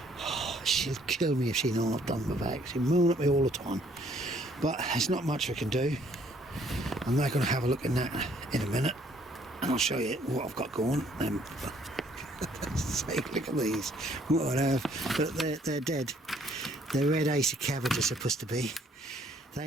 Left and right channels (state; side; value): normal; both; correlation 0.64